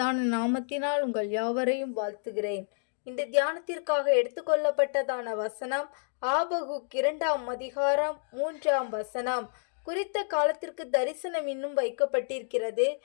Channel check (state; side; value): silent; right; digital silence